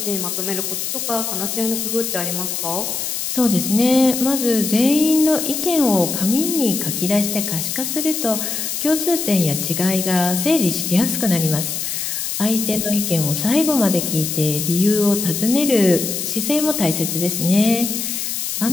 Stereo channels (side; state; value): left; noise; hiss, 3 dB below the sound